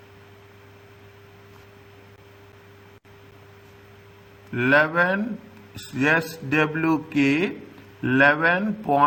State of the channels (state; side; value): identical; both; correlation 1.00